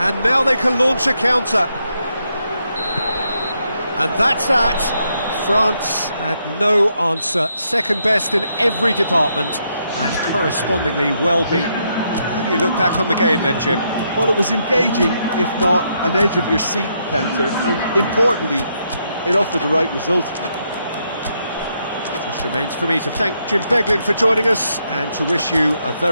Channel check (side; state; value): both; inverted; correlation -0.78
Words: now they can launch a counter. And that's that. France had no answer. Second best in every department and correspondingly well beaten. How do you look back on the game then, Jim? Well, it was engaging, if not an edge-of-your-seat encounter, and importantly, it offered the right result. Just remains for me to thank Jim Beglin for joining us and to wish you a